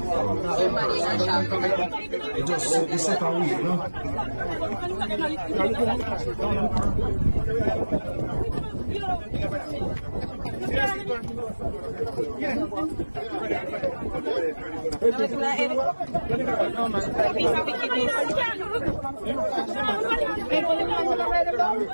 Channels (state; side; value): inverted; both; correlation -1.00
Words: It just it's set away, you know.